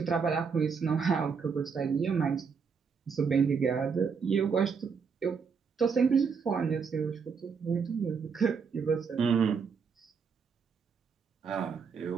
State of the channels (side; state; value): left; quieter; 5.9 dB